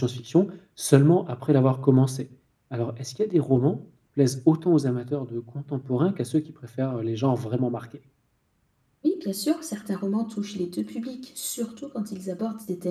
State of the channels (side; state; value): both; identical; correlation 1.00